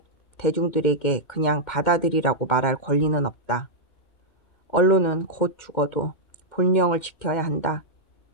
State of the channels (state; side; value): late; right; 2.1 ms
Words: 대중들에게 그냥 받아들이라고 말할 권리는 없다. 언론은 곧 죽어도 본령을 지켜야 한다.